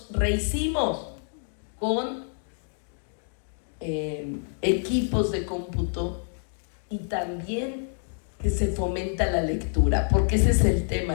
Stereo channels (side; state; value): right; silent; digital silence